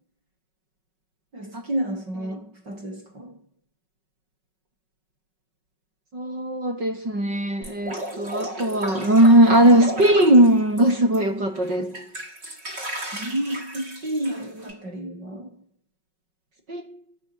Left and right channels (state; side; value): late; left; 5.4 ms